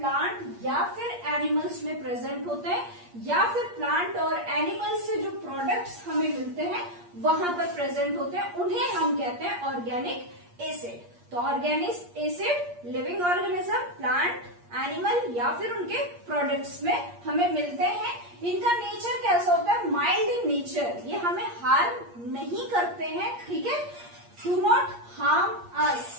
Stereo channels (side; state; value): left; late; 8.5 ms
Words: या फिर एनिमल्स में प्रेजेंट होते हैं, या फिर प्लांट और एनिमल्स से जो प्रोडक्ट्स हमें मिलते हैं वहां पर प्रेजेंट होते हैं, उन्हें हम कहते हैं ऑर्गेनिक एसिड। तो organic acid living organism, plant, animal या फिर उनके प्रोडक्ट्स में हमें मिलते हैं। इनका नेचर कैसा होता है, माइल्ड इन नेचर, ये हमें हार्म नहीं करते हैं। ठीक है, डू नॉट हार्म अस।